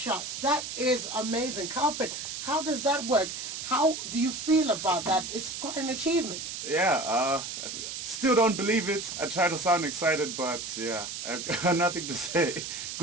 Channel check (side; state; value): right; noise; hiss, 6 dB below the sound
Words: That is amazing. Carlprit, how does that work? How do you feel about that? It's quite an achievement. Yeah, still don't believe it. I try to sound excited, but yeah, I've got nothing to say.